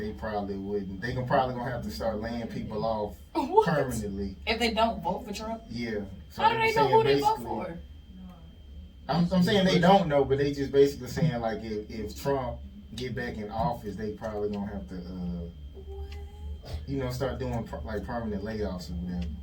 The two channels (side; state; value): both; identical; correlation 1.00